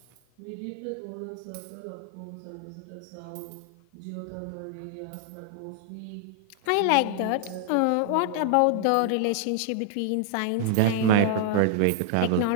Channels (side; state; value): both; different; correlation 0.00